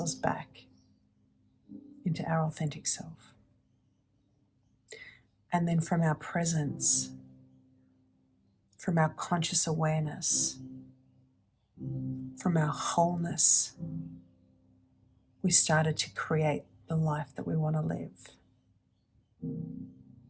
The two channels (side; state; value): both; identical; correlation 1.00